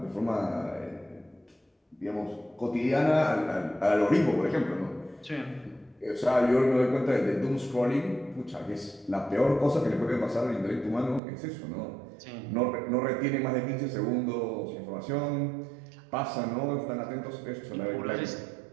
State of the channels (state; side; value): drops out; left; at 11.2 s